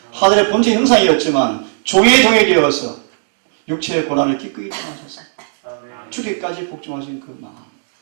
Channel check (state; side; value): silent; left; digital silence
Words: 하늘의 본체 형상이었지만 종의 되어서 육체의 고난을 기꺼이 당하셔서 아멘. 죽기까지 복종하신 그 마음.